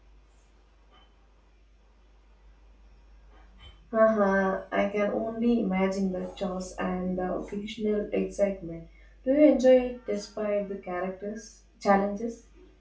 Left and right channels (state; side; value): identical; both; correlation 1.00